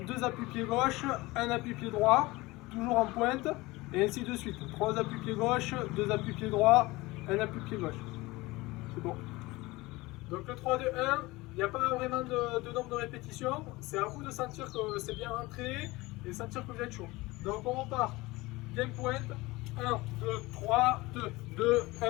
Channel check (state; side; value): quieter; right; 21.2 dB